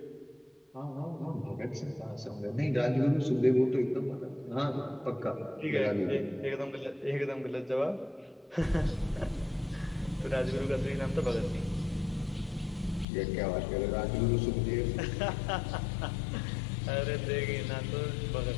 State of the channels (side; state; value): right; drops out; at 13.1 s